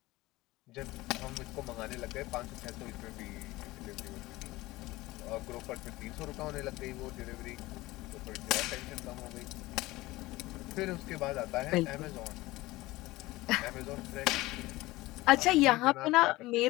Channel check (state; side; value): quieter; right; 19.3 dB